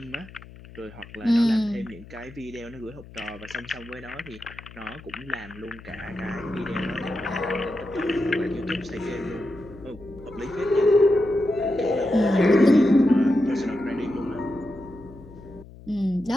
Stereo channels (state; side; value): noise; left; hum, 19 dB below the sound